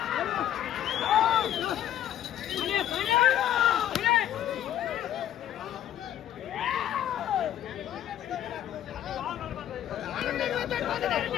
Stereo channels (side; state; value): right; quieter; 11.5 dB